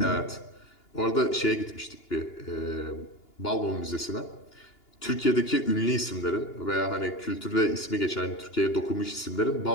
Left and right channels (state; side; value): late; right; 2.9 ms